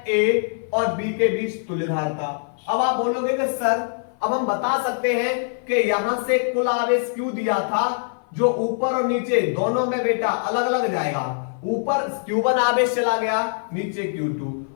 A और B के बीच तुल्य धारता। अब आप बोलोगे कि सर अब हम बता सकते हैं कि यहां से कुल आवेश Q दिया था, जो ऊपर और नीचे दोनों में बेटा अलग अलग जाएगा। ऊपर Q1 आवेश चला गया, नीचे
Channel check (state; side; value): silent; right; 56 dB below the other